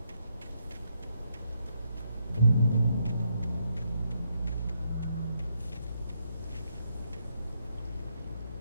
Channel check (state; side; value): inverted; both; correlation -0.78